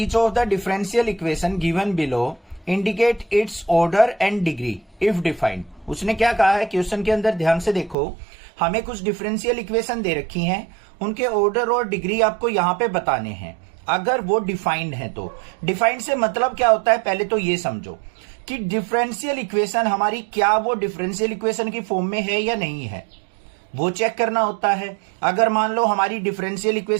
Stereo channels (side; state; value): left; drops out; at 8.0 s